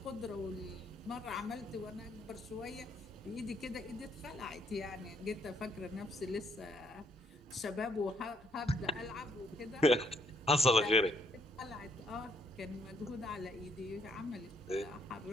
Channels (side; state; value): both; normal; correlation 0.70